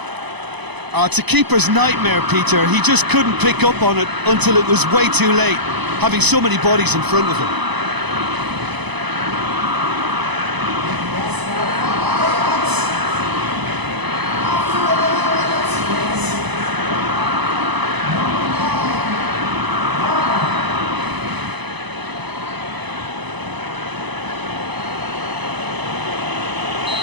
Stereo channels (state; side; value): late; left; 1.0 ms